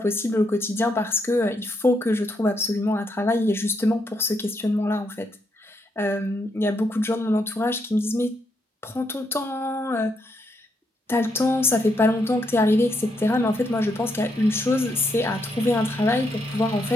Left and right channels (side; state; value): both; normal; correlation 0.77